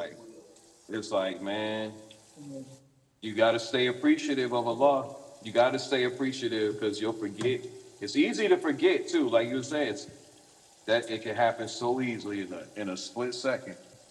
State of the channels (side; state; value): both; identical; correlation 1.00